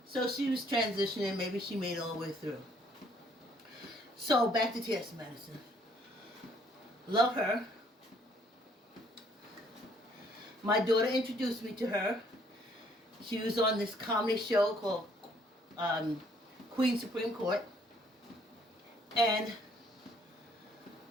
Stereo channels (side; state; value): both; normal; correlation 0.64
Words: So she was transitioning. Maybe she made it all the way through. So back to T.S. Madison. Love her. My daughter introduced me to her. She was on this comedy show called Queen Supreme Court. And